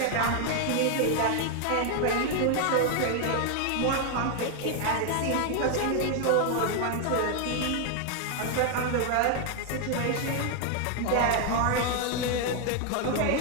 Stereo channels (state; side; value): different; both; correlation 0.01